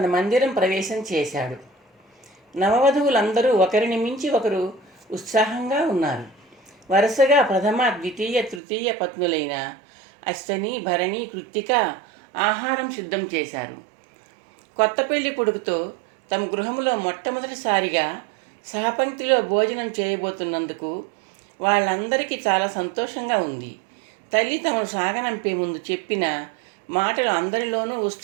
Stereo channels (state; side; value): drops out; left; at 8.6 s